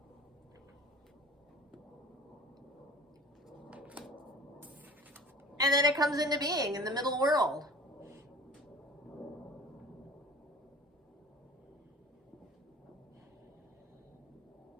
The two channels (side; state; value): both; normal; correlation 0.43